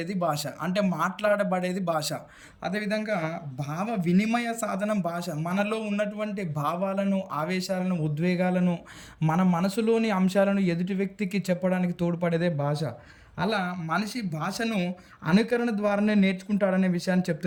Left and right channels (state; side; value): identical; both; correlation 1.00